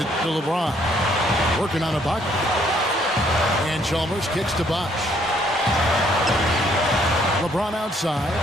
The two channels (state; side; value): normal; both; correlation 0.66